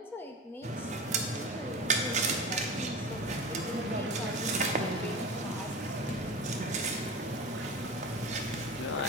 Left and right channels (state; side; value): normal; both; correlation 0.31